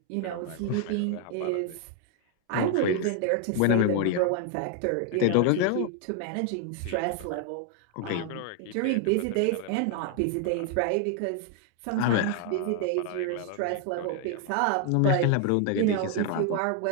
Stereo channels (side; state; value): both; different; correlation 0.00